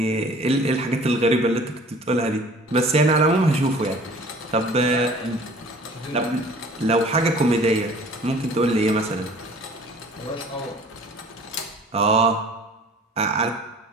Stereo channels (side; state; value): both; normal; correlation 0.48